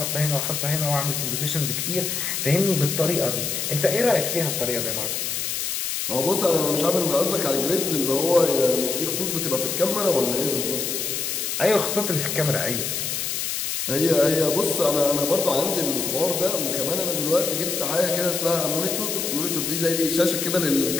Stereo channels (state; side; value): noise; left; hiss, 2 dB below the sound